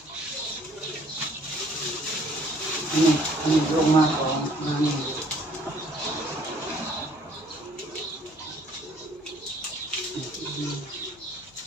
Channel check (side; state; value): left; noise; hum, 27 dB below the sound